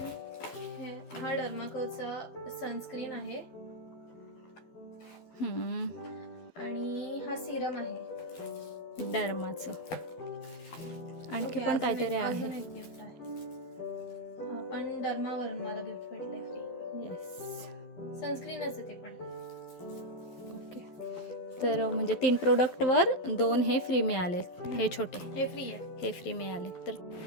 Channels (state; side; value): late; right; 12 ms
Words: हा डर्माकोचा सनस्क्रीन आहे आणि हा सिरम आहे डर्माचं. आणखी ओके, पण काहीतरी अजून आहे. एक गिफ्ट आहे. हा पण डर्मावरून मला गिफ्ट भेटलंय फ्री. येस. सनस्क्रीनच आहे ते पण. ओके. तर म्हणजे 3 प्रोडक्टवर 2 हे फ्री मिळाले. हे छोटे हे फ्री आहे. हे फ्री मिळाले. तर